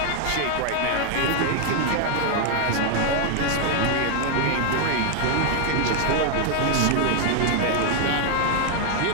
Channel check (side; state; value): both; different; correlation 0.00